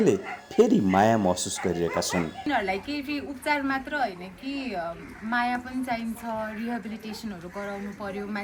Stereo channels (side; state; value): both; identical; correlation 1.00